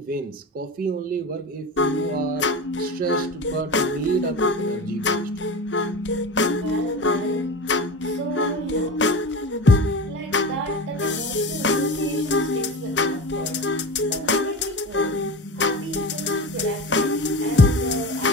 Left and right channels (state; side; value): normal; both; correlation 0.28